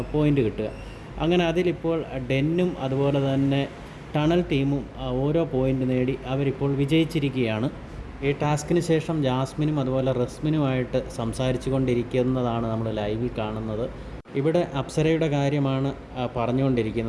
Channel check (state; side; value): identical; both; correlation 1.00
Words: പോയിൻ്റ് കിട്ടുക. അങ്ങനെ അതിലിപ്പോൾ ഡെന്നും അതുപോലെ തന്നെ ടണൽ ടീമും ഓരോ പോയിൻ്റ് നേടി അവരിപ്പോൾ വിജയിച്ചിരിക്കുകയാണ്. ഈ ടാസ്കിന് ശേഷം ജാസ്മിനും അതുപോലെ റസ്മിനുമായിട്ട് സംസാരിച്ചു കൊണ്ടിരിക്കുന്നതാണ് നമ്മൾ ലൈവിൽ കാണുന്നത്. ഇവിടെ അപ്സരയുടെ കാര്യമാണ്